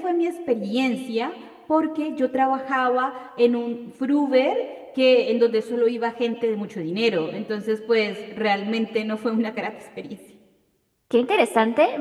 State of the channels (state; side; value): identical; both; correlation 1.00